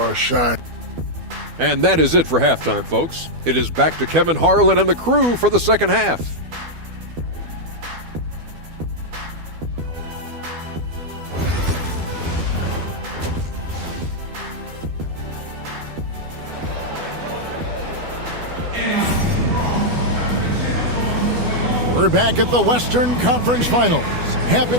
shine. And that is it for halftime, folks. It is back to Kevin Harlan and the crew for the second half. We're back at the Western Conference Finals. Happy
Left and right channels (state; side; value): late; left; 12 ms